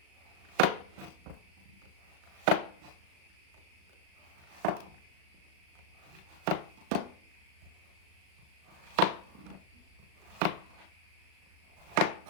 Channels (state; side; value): late; left; 37 ms